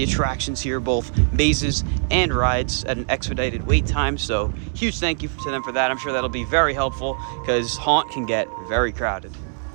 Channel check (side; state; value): left; silent; digital silence